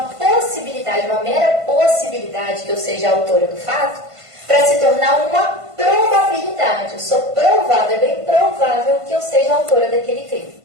possibilidade, uma mera possibilidade que eu seja a autora do fato, para se tornar uma probabilidade. Eu sou provável, é bem provável que eu seja a autora daquele crime.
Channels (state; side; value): late; left; 1.5 ms